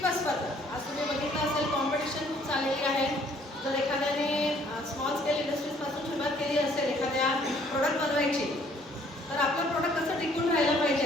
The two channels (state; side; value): normal; both; correlation 0.61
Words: स्पर्धा. आज तुम्ही बघितलं असेल, कॉम्पिटिशन खूप चाललेली आहे. जर एखाद्याने स्मॉल स्केल इंडस्ट्रीजपासून सुरुवात केली असेल एखाद्या प्रोडक्ट बनवायची, तर आपलं प्रोडक्ट कसं टिकून राहिलं पाहिजे